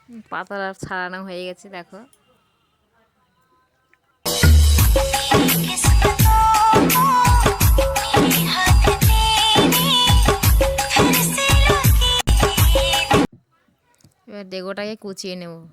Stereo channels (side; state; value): both; identical; correlation 1.00